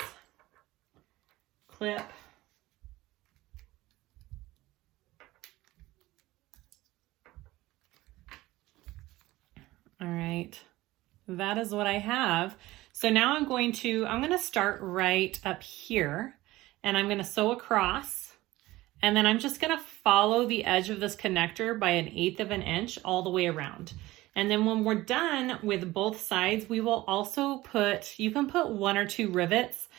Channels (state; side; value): quieter; left; 18.0 dB